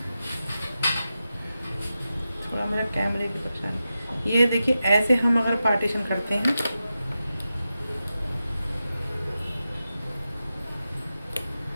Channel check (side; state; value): both; inverted; correlation -0.91